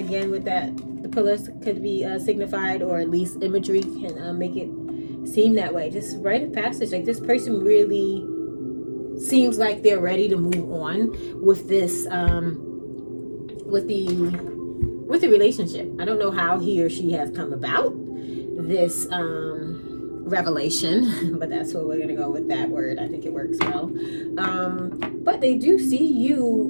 with that. The pillars could be signified, or at least imagery can make it seem that way. Just rite of passage. Like, this person really seems like they're ready to move on with this, with the relationship. I don't know how he or she has come about this revelation, but that's what we're gonna go with, that word. I think it works well. But they do see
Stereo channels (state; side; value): inverted; both; correlation -1.00